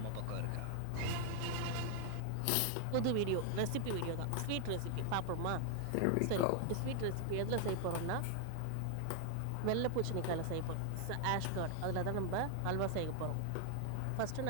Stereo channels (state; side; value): different; both; correlation 0.00